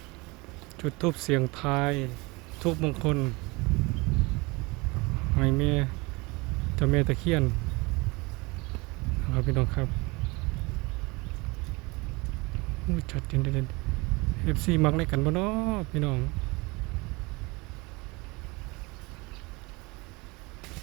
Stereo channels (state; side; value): quieter; left; 25.2 dB